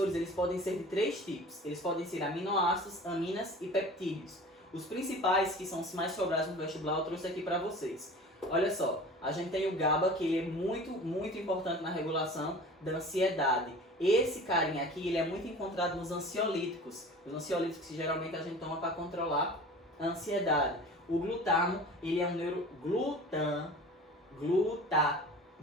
eles podem ser de 3 tipos. Eles podem ser aminoácidos, aminas e peptídeos. Os principais, que são os mais sobrados no vestibular, eu trouxe aqui para vocês. Olha só, a gente tem o GABA, que ele é muito importante na regulação da ansiedade. Esse carinha aqui, ele é muito encontrado nos ansiolíticos. Os ansiolíticos que geralmente a gente toma para controlar a ansiedade. O glutamo, ele é um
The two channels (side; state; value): both; normal; correlation 0.40